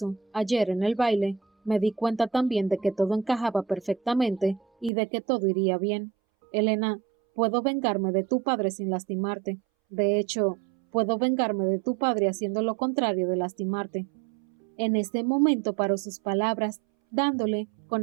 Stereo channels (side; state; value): left; drops out; at 4.9 s